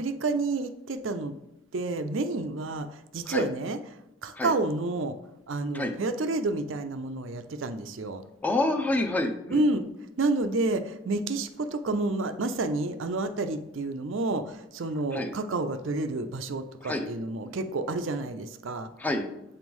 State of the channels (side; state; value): both; normal; correlation 0.40